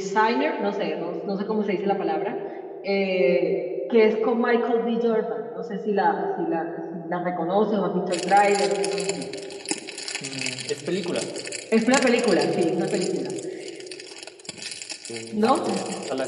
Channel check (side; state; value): both; identical; correlation 1.00